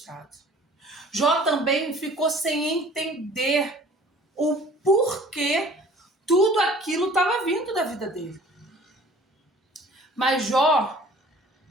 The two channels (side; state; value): both; normal; correlation 0.50